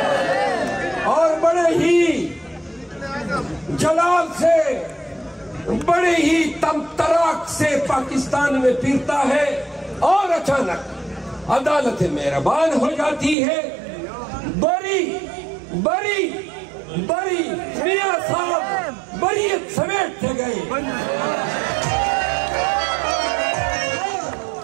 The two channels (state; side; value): drops out; left; at 13.4 s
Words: اور بڑے ہی جلال سے، بڑے ہی تمطراق سے پاکستان میں پھرتا ہے، اور اچانک عدالت مہربان ہو جاتی ہے۔ بری میاں صاحب بریت سمیٹتے گئے۔